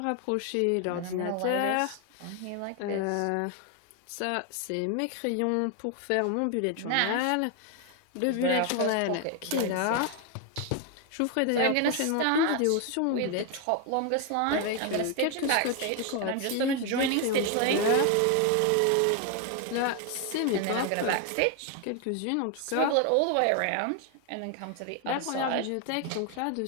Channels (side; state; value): both; different; correlation 0.01